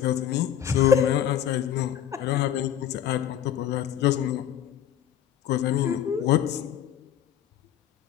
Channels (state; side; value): quieter; right; 9.9 dB